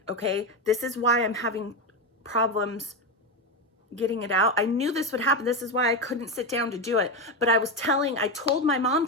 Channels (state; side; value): normal; both; correlation 0.13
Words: okay? This is why I'm having problems getting it out. I knew this would happen. This is why I couldn't sit down to do it. But I told my mom